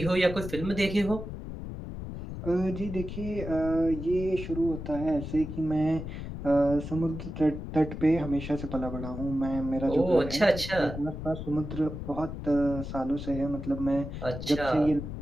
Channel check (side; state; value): left; noise; rumble, 8 dB below the sound